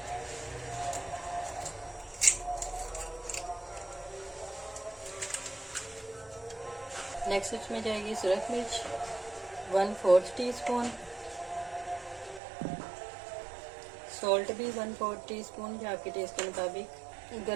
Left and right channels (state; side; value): drops out; left; at 12.4 s